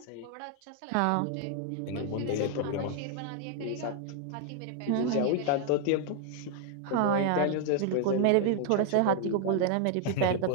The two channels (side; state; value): both; different; correlation 0.00